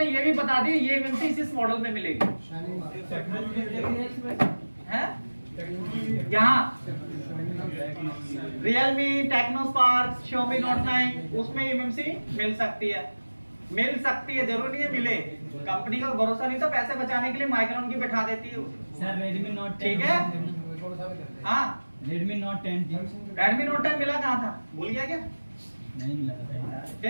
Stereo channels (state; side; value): inverted; both; correlation -1.00